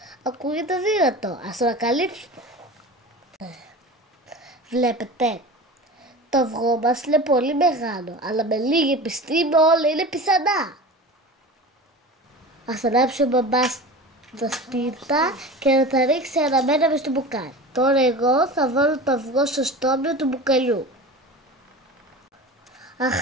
Ακούγεται δύνατο, ας το ανακαλύψουμε. Βλέπετε, το αυγό μας είναι πολύ μεγάλο, αλλά με λίγη επιστήμη όλα είναι πιθανά. Ας ανάψει ο μπαμπάς τα σπίρτα και να τα ρίξει αναμένα μες στο μπουκάλι. Τώρα εγώ θα βάλω το αυγό στο στόμιο του μπουκαλιού.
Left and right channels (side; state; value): both; normal; correlation 0.33